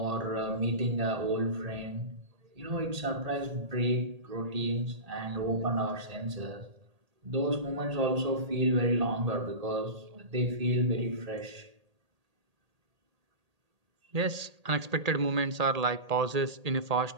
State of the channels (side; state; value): left; late; 1.8 ms